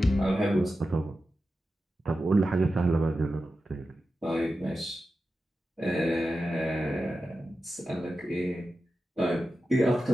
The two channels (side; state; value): both; normal; correlation 0.92